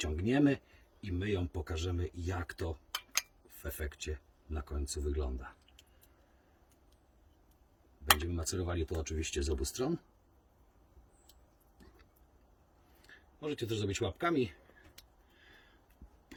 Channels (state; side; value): identical; both; correlation 1.00